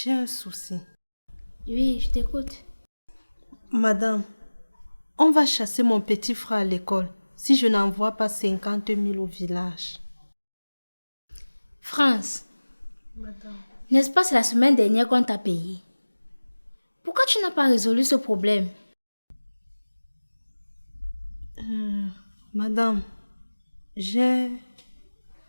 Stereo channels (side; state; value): both; inverted; correlation -1.00